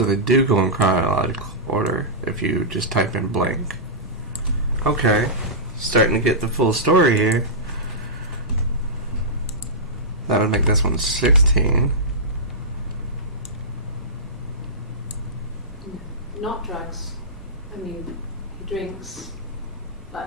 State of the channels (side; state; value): both; normal; correlation -0.15